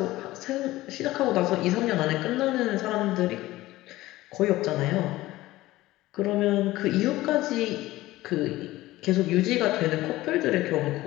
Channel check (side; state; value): right; quieter; 17.3 dB